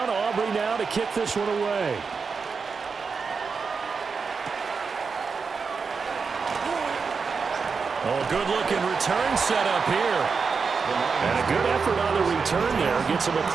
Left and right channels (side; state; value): left; quieter; 5.2 dB